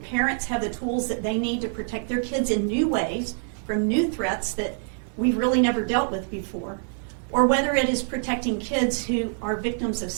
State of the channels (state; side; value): silent; left; digital silence